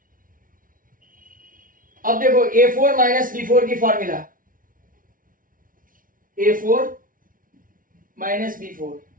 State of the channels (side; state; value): left; late; 0.39 ms